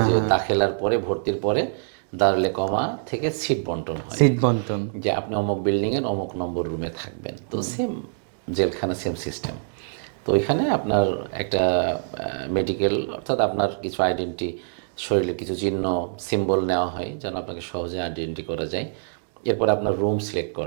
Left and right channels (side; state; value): left; silent; digital silence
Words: যে দাখিলার পরে ভর্তির পরে দারুল ইকামা থেকে সিট বন্টন হয়, সিট বন্টন। যে আপনি অমুক বিল্ডিংয়ের অমুক নম্বর রুমে থাকবেন। তো সেম জেলখানা, সেম সিস্টেম। তো ওইখানে আপনার একটা মেডিকেল, অর্থাৎ আপনার কিছু আইডেন্টি, শরীরের কিছু চিহ্ন, সিম্বল নেওয়া হয় যেন আপনাকে সহজে আইডেন্টি করা যায়। এরপর আপনার রুম সিলেক্ট